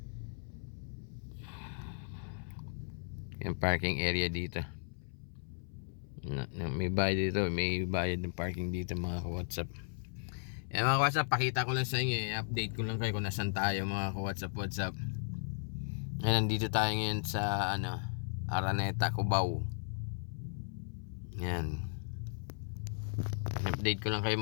Yung parking area dito. May bayad dito, may bayad ng parking dito mga ka-WhatsApp. Mga ka-WhatsApp, pakita ko lang sa inyo, update ko lang kayo kung nasan tayo mga ka-WhatsApp. Nandito tayo ngayon sa Araneta, Cubao. Yan. Update ko lang kayo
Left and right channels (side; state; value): right; silent; 54 dB below the other